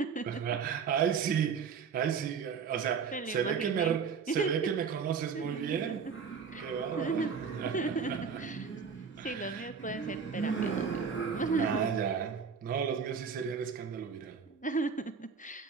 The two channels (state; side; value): quieter; left; 6.1 dB